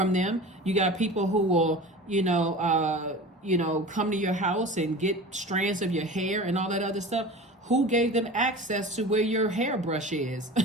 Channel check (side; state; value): both; normal; correlation 0.35